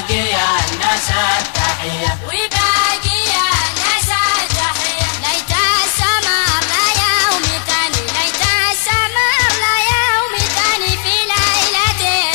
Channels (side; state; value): right; silent; digital silence